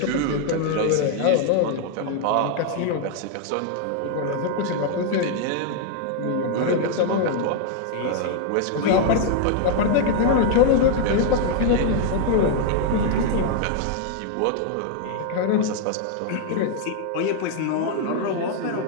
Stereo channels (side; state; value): both; different; correlation 0.00